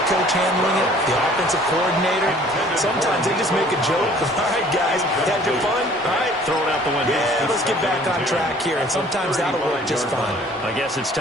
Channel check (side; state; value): both; normal; correlation 0.54